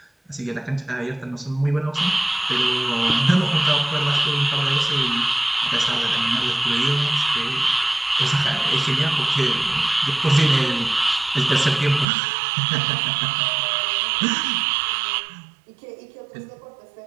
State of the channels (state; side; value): drops out; left; at 12.1 s